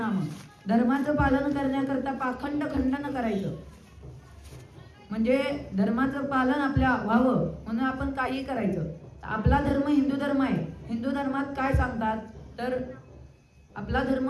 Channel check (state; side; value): identical; both; correlation 1.00